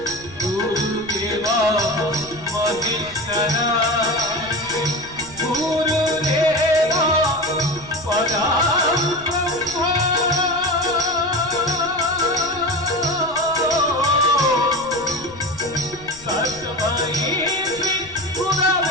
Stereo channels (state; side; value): noise; left; rumble, 21 dB below the sound